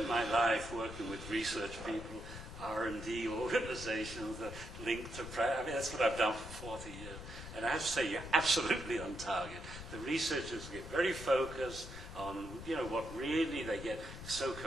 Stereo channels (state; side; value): noise; left; rumble, 11 dB below the sound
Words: my life working with research people, R&D organizations that link to practice. I mean, that's what I've done for 40 years. And I have to say, you're absolutely on target. The researchers get very focused on, what really they get so